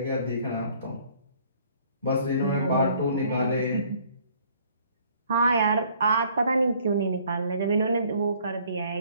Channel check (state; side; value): inverted; both; correlation -0.59